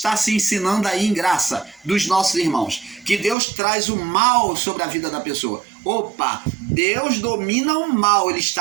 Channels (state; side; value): drops out; left; at 3.4 s